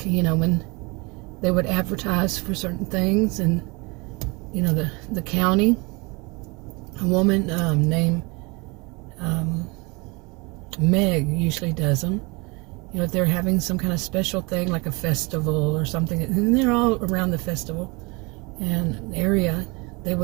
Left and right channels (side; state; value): left; quieter; 27.1 dB